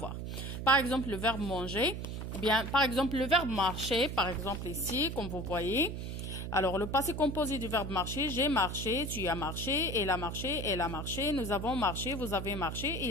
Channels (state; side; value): noise; right; hum, 5 dB below the sound